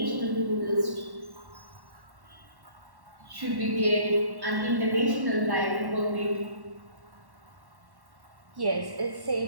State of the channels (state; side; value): late; left; 1.1 ms